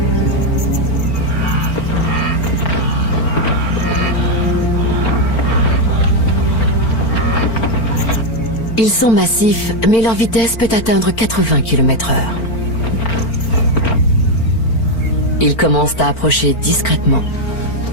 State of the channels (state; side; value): late; right; 4.4 ms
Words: Ils sont massifs, mais leur vitesse peut atteindre 80 km/h. Ils commencent à approcher discrètement.